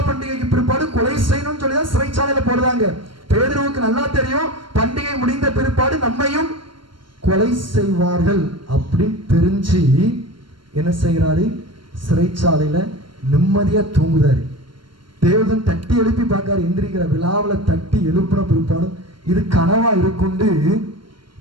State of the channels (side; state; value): left; late; 0.72 ms